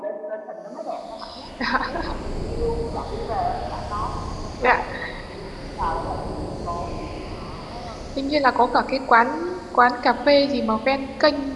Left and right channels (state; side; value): identical; both; correlation 1.00